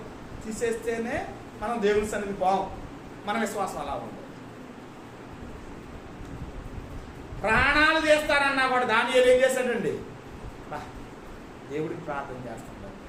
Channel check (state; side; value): identical; both; correlation 1.00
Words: తీసేస్తేనే మనం దేవుని సన్నిధి పోం. మన విశ్వాసం అలా ఉంది. ప్రాణాలు చేస్తారన్నా కూడా దానియేలు ఏం చేశాడండి? దేవుడికి ప్రార్థన చేస్తాడు.